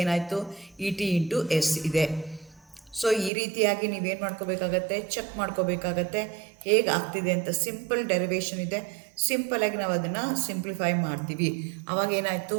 ಏನಾಯಿತು, ET ಇಂಟು S ಇದೆ. ಸೊ ಈ ರೀತಿಯಾಗಿ ನೀವೇನು ಮಾಡ್ಕೋಬೇಕಾಗತ್ತೆ, ಚೆಕ್ ಮಾಡ್ಕೋಬೇಕಾಗತ್ತೆ ಹೇಗೆ ಆಗ್ತಿದೆ ಅಂತ. ಸಿಂಪಲ್ ಡೆರಿವೇಷನ್ ಇದೆ, ಸಿಂಪಲಾಗಿ ನಾವು ಅದನ್ನು ಸಿಂಪ್ಲಿಫೈ ಮಾಡ್ತೀವಿ. ಅವಾಗ ಏನಾಯಿತು,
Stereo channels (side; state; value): left; drops out; at 3.3 s